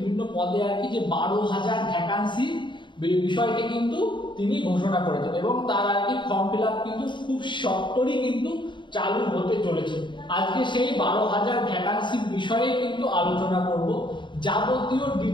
পদে আর কি যে 12,000 ভ্যাকান্সি বিষয়টি কিন্তু তিনি ঘোষণা করেছেন এবং তার আর কি ফর্ম ফিল আপ কিন্তু খুব সত্তরই কিন্তু চালু হতে চলেছে। আজকে সেই 12,000 ভ্যাকান্সির বিষয়ে কিন্তু আলোচনা করব। যাবতীয়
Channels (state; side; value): late; right; 0.23 ms